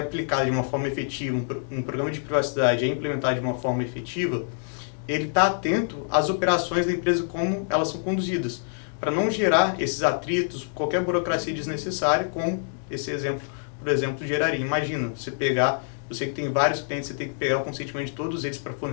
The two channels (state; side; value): silent; right; digital silence